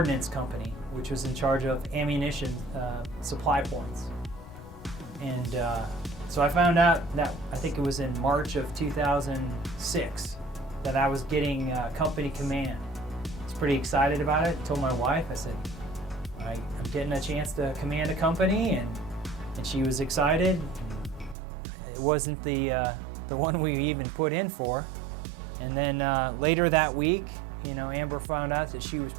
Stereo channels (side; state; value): left; drops out; at 21.4 s